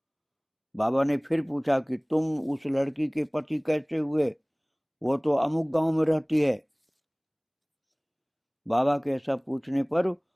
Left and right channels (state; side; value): identical; both; correlation 1.00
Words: बाबा ने फिर पूछा कि तुम उस लड़की के पति कैसे हुए? वो तो अमुक गांव में रहती है। बाबा के ऐसा पूछने पर